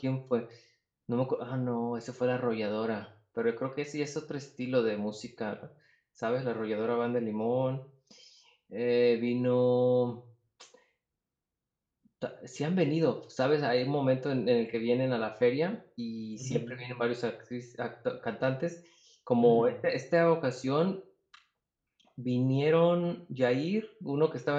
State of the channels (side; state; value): both; identical; correlation 1.00